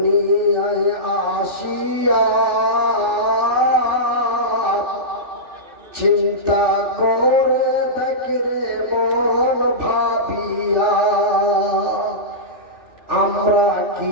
আসিয়া চিন্তা করে দেখরে মন ভাবিয়া আমরা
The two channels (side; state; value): left; late; 3.4 ms